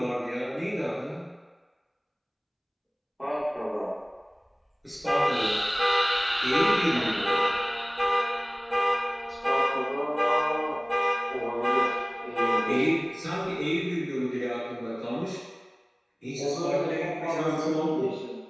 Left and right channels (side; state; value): both; identical; correlation 1.00